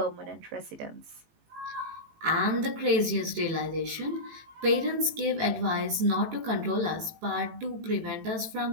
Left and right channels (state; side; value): late; left; 18 ms